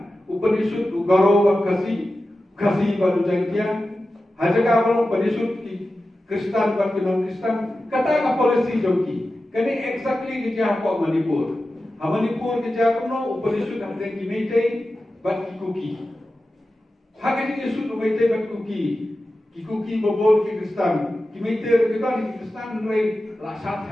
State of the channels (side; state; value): both; normal; correlation 0.93